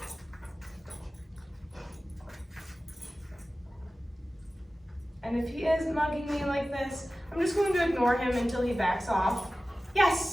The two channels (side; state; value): both; normal; correlation 0.96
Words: And if he is mugging me like this, I'm just going to ignore him until he backs off.